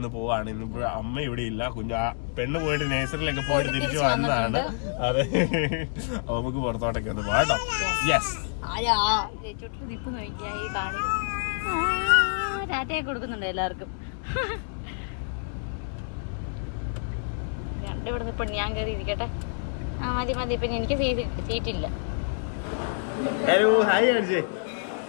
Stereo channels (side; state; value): right; silent; 60 dB below the other